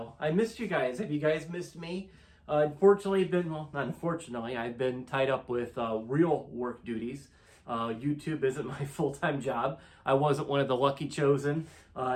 I missed you guys. Have you guys missed me? Not unfortunately, I've been tied up with real work duties. YouTube isn't my full-time job. I wasn't one of the lucky chosen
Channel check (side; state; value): both; identical; correlation 1.00